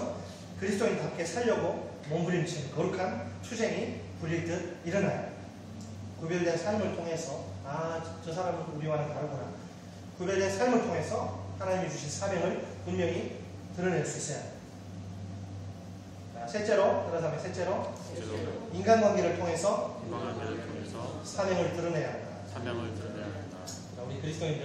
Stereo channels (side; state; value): both; identical; correlation 1.00